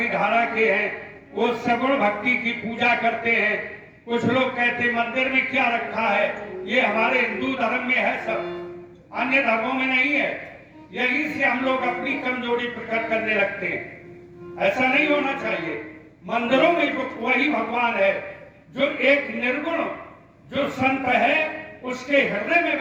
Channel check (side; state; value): both; identical; correlation 1.00